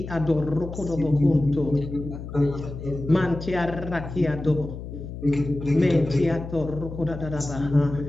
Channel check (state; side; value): noise; left; hum, 10 dB below the sound